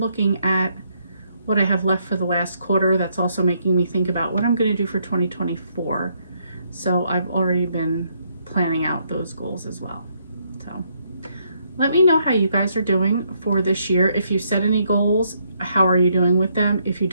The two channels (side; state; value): both; inverted; correlation -0.72